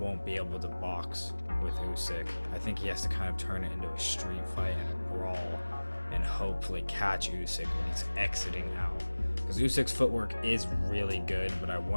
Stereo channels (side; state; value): both; inverted; correlation -1.00